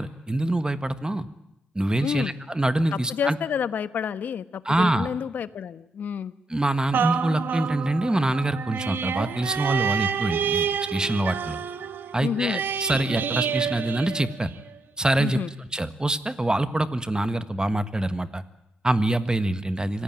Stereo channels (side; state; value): both; normal; correlation 0.82